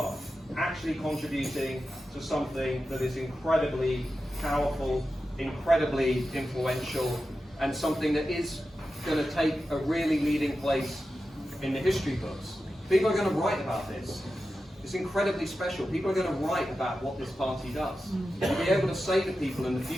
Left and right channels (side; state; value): both; normal; correlation 0.92